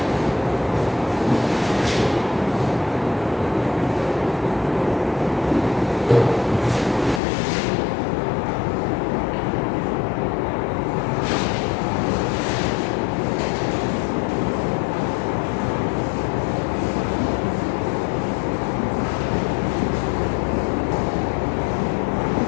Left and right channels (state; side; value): drops out; right; at 7.2 s